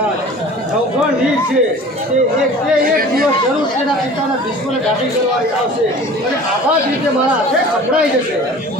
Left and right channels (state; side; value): normal; both; correlation 0.43